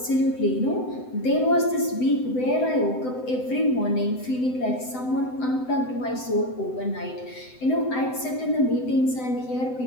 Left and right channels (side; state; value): right; late; 7.9 ms